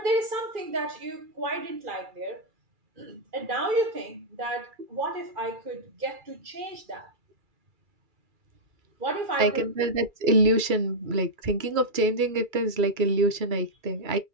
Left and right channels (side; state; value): left; late; 2.3 ms